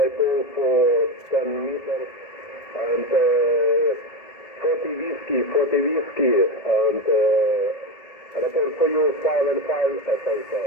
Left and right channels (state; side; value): late; right; 1.7 ms